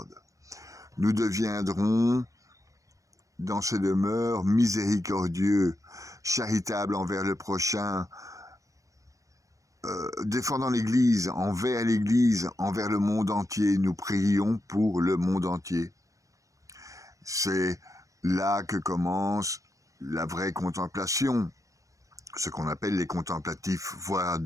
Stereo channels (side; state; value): left; late; 0.16 ms